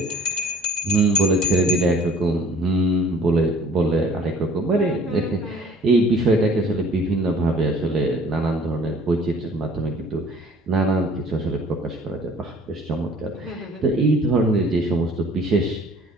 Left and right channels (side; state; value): both; normal; correlation 0.52